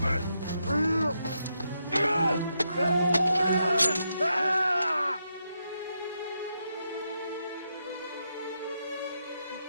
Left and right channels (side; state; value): both; inverted; correlation -0.82